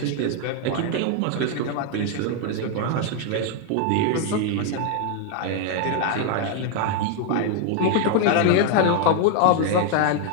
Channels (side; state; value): both; different; correlation 0.00